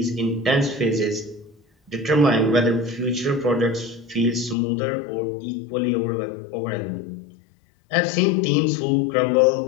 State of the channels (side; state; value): right; drops out; at 4.5 s